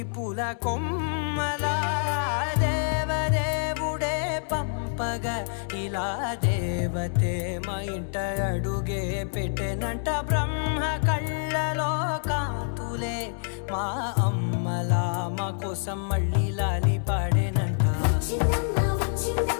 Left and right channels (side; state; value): right; silent; digital silence